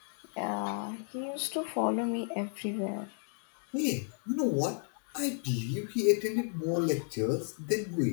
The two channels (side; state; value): right; silent; 56 dB below the other